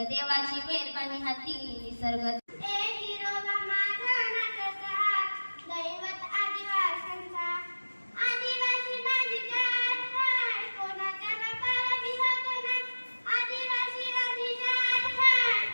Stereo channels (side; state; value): both; inverted; correlation -1.00